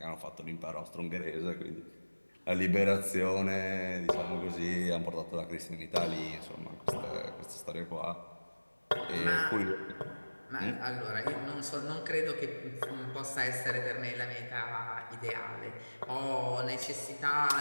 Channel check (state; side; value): inverted; both; correlation -1.00